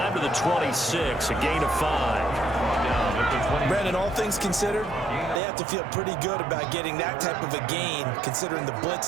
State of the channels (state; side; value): drops out; left; at 5.4 s